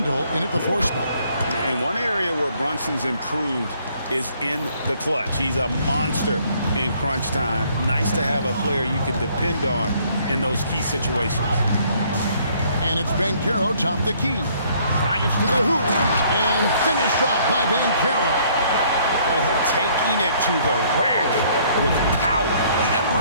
in at the 4 spot. And one area where Brunson's improved is in the clutch. He's a monster in crunch time. Nice to have a player you can depend on in those key situations. And it's Banchero top the key. Drives to the hoop and finished off by Banchero. Oh, taking it to the rack with power.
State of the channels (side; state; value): both; inverted; correlation -0.63